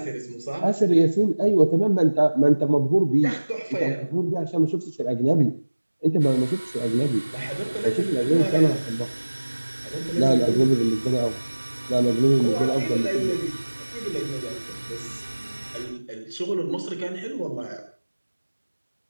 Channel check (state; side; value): inverted; both; correlation -1.00